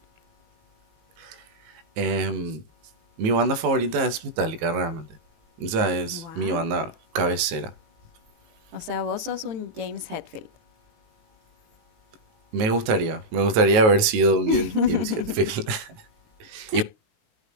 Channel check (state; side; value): late; left; 19 ms